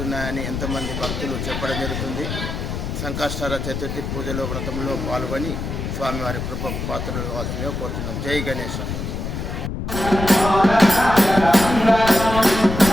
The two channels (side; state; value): left; noise; rumble, 5 dB below the sound